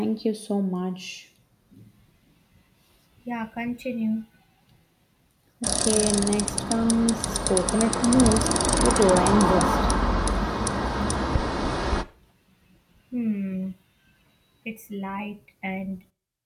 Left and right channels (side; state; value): both; identical; correlation 1.00